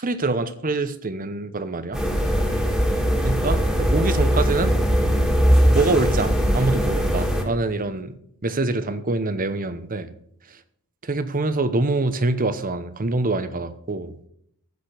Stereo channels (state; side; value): normal; both; correlation 0.72